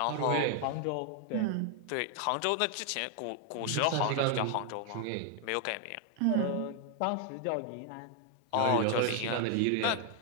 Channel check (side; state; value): both; different; correlation 0.00